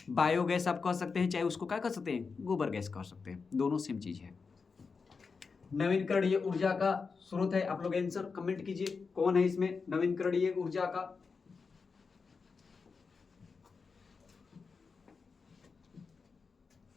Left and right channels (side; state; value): right; quieter; 5.0 dB